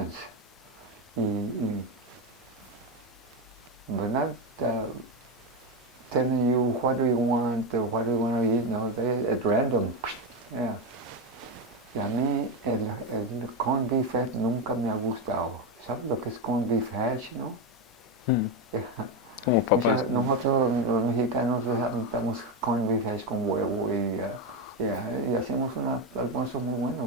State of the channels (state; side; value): normal; both; correlation 0.11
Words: But not telling you what do you want or what do you want to eat, no, they at random. Yeah. Y a mí el corned beef hash nunca me ha gustado. ¿Sabes lo que es corned beef hash, no? Como papas. Nosotros los mexicanos damos corned beef hash con huevo y hacemos un almuerzo muy bueno,